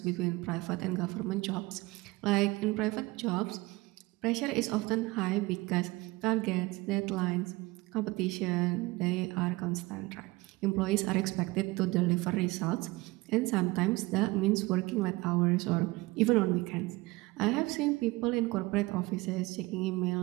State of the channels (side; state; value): left; quieter; 21.8 dB